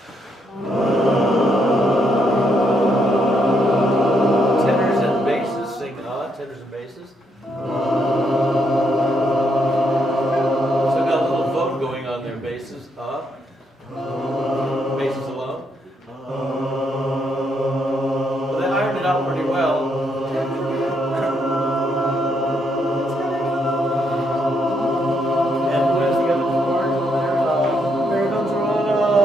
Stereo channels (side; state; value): both; normal; correlation 0.76